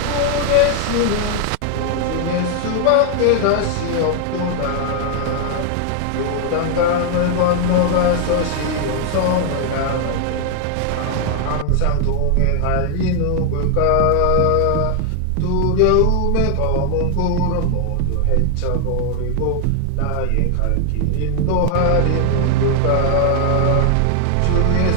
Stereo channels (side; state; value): both; different; correlation 0.00